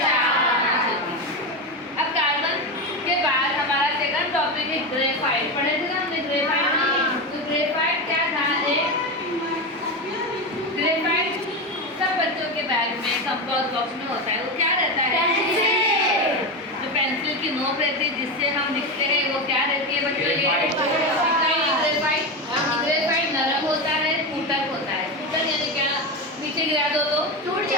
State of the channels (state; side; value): normal; both; correlation 0.17